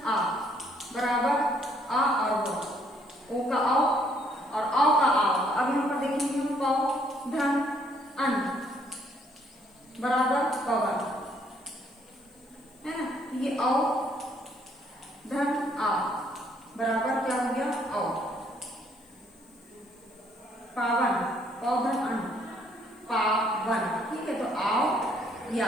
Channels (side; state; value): left; noise; hiss, 29 dB below the sound